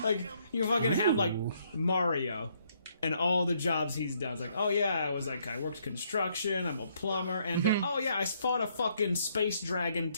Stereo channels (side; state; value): both; inverted; correlation -0.70